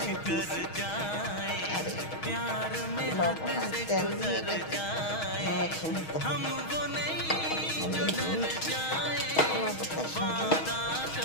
দিয়েছি আর লবণ আর তেল দিয়ে এটাকে মেখে নিতে হবে। কলা পাতার সাথে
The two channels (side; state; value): right; late; 6.3 ms